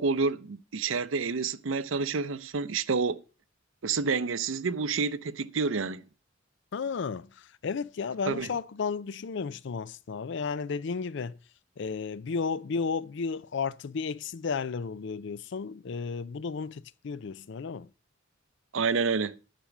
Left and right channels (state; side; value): normal; both; correlation -0.07